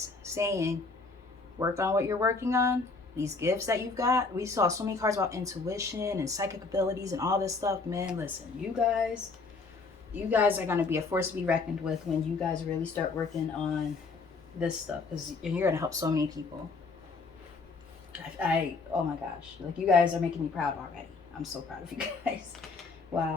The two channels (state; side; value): quieter; right; 4.1 dB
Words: saying, work on what you're working on, these gifts that you've got. We saw so many cards about intuition and psychic abilities and all this stuff. Man, listen, you guys are going to be a force to be reckoned with when you guys really start working on this stuff, because you're going to help so many people. Oh my gosh, like, you guys are making me proud already. I'm so proud of you guys.